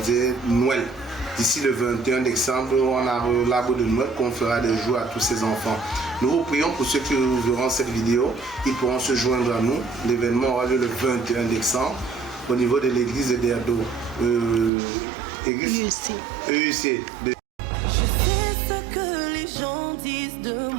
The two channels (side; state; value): left; drops out; at 14.7 s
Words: Noël. D'ici le 21 décembre, on a l'arbre de Noël qu'on fera des jours à tous ces enfants. Nous vous prions pour ceux qui verront cette vidéo, ils pourront se joindre à nous. L'événement aura lieu le 21 décembre au niveau de l'église de Derdo. Église EUC. Je sais ce que les gens disent de